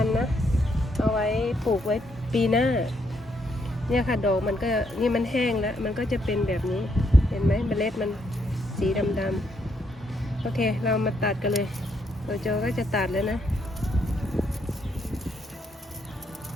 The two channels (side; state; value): both; normal; correlation 0.75